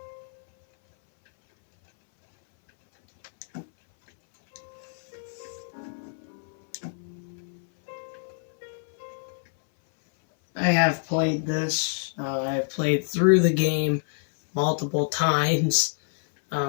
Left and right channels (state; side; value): silent; right; 59 dB below the other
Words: I have played this. I've played through the game multiple times,